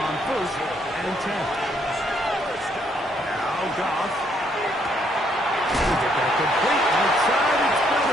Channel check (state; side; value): normal; both; correlation 0.71